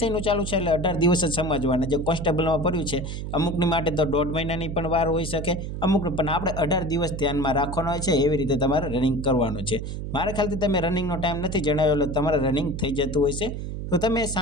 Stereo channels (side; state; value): right; noise; hum, 6 dB below the sound